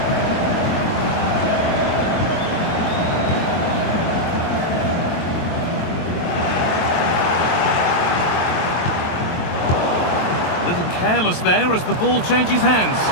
A little careless there as the ball changes hands.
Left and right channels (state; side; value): late; right; 23 ms